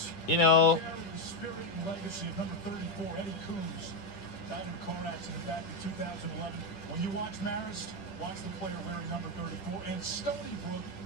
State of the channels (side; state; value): right; late; 11 ms